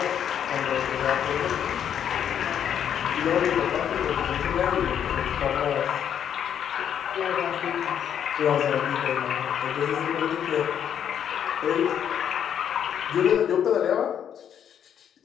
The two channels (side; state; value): right; quieter; 9.0 dB